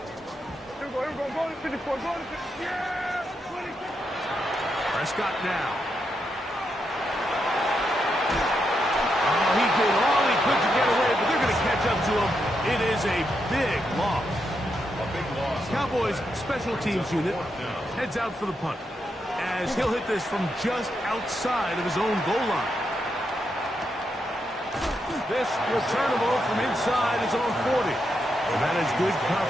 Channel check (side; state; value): both; normal; correlation 0.83